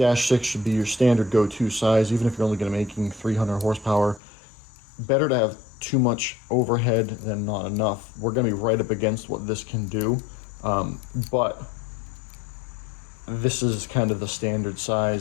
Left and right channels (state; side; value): drops out; right; at 4.2 s